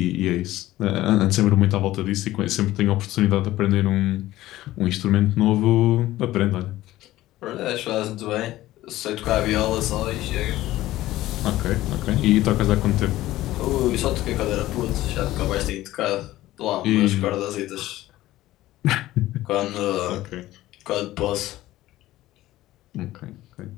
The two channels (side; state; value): right; quieter; 15.8 dB